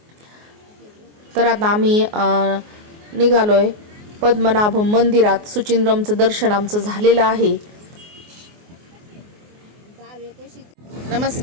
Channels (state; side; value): late; left; 24 ms